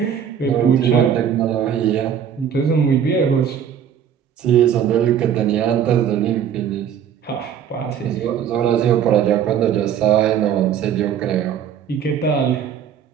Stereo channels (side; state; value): left; quieter; 8.6 dB